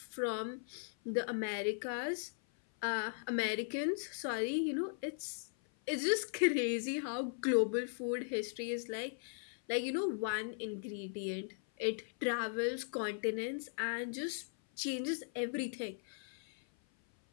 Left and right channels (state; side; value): silent; right; 52 dB below the other